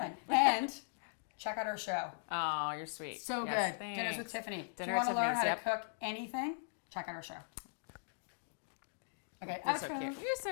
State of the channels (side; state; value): right; silent; digital silence